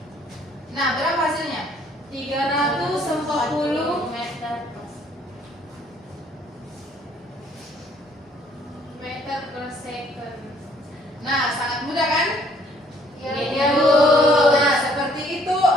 Nah, berapa hasilnya? 340 meter per second. Nah, sangat mudah kan? Iya, Bu. Bu. Nah, seperti itu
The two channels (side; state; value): both; normal; correlation 0.62